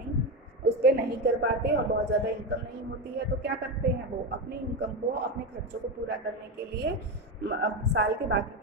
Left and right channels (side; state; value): both; normal; correlation 0.15